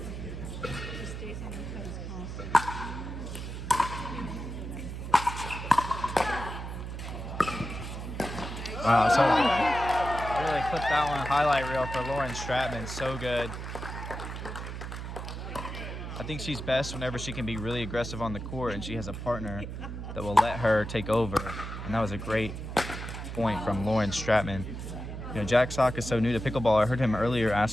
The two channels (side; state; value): right; noise; hum, 7 dB below the sound